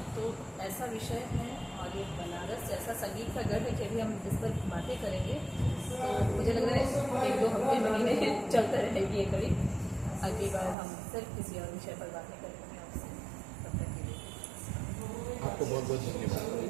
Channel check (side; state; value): left; drops out; at 10.8 s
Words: तो ऐसा विषय है और ये बनारस ऐसा संगीत का गढ़ है कि अभी हम जिस पर बातें करेंगे तो मुझे लग रहा है 1-2 हफ्ते महीने चलता रहेगी ये कड़ी। अगली बार हम सिर्फ किसी और विषय पर बातें करेंगे आपसे। तब तक के लिए आपको बहुत बहुत धन्यवाद।